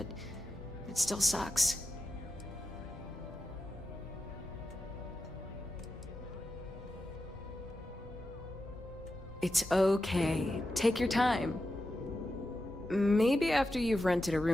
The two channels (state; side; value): normal; both; correlation 0.90